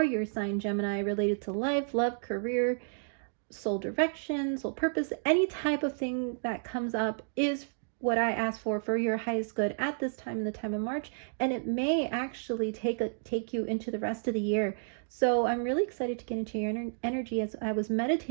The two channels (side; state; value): left; silent; digital silence